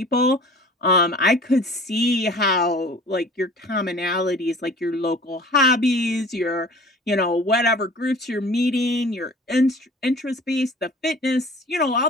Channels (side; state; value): both; normal; correlation 0.45